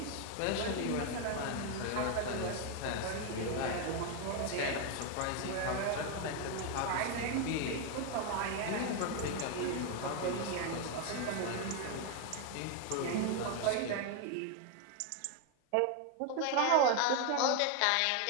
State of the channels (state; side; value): different; both; correlation 0.01